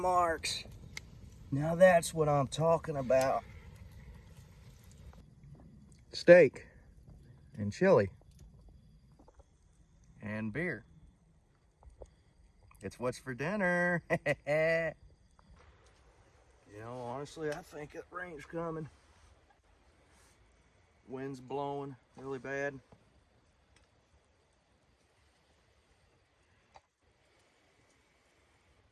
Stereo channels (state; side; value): identical; both; correlation 1.00